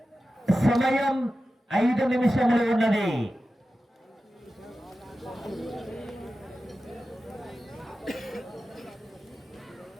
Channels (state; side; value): normal; both; correlation 0.93